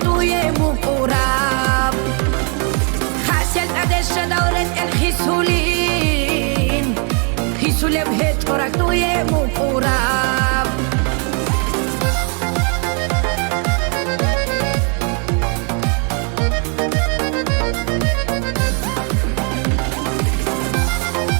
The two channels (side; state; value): left; quieter; 38.2 dB